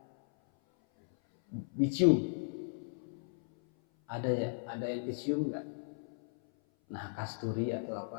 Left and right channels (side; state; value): right; silent; 54 dB below the other